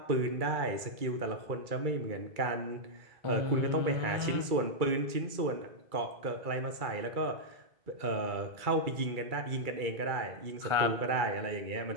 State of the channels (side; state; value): left; late; 2.3 ms